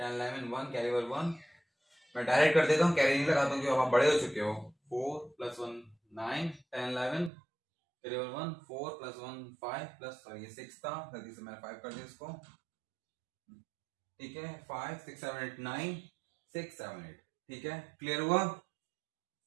11 1 कैरी ओवर 1। मैं डायरेक्ट कर देता हूँ, कैरी नहीं लगाता हूँ क्योंकि आप बड़े हो चुके हो। 4 प्लस 1 9 10 11 वेरिएबल 1 4 प्लस 1 5 प्लस ये 6 था, जल्दी से मैंने 5 कर दिया इसको, ठीक है। 5 6 7 8 9 6 7 8, ठीक है। क्लियर हुआ?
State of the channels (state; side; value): drops out; left; at 7.3 s